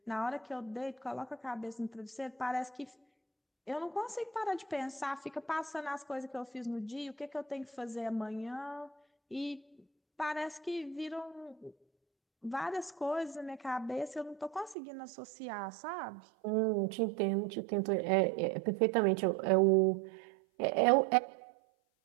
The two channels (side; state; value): left; drops out; at 14.8 s